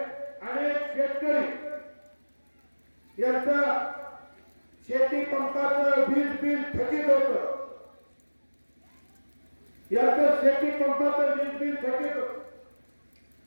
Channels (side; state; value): both; inverted; correlation -1.00